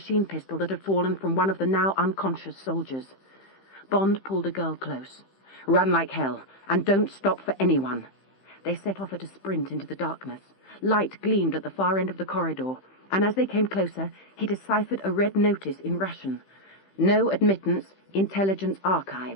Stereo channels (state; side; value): late; right; 15 ms